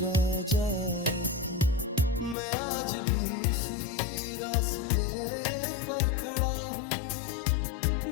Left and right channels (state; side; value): drops out; right; at 2.4 s